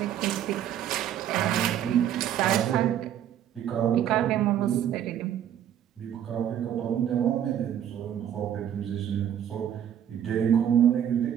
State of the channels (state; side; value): quieter; left; 10.1 dB